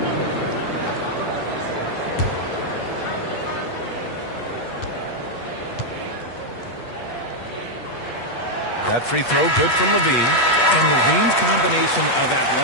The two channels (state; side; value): late; right; 8.3 ms